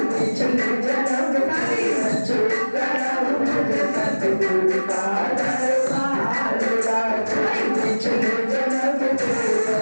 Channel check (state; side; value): inverted; both; correlation -1.00